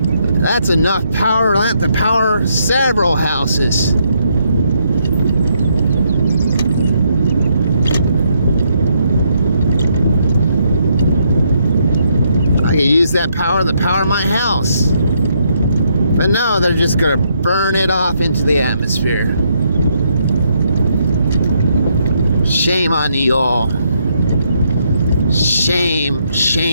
That's enough power to power several houses. I could use that power to power my house. But no, they're just gonna burn it off into the atmosphere. Shame on you all. Shame,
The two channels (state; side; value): inverted; both; correlation -0.75